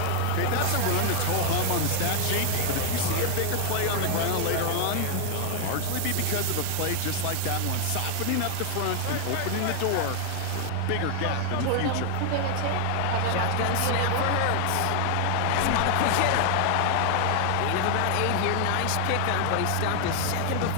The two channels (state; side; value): different; both; correlation 0.00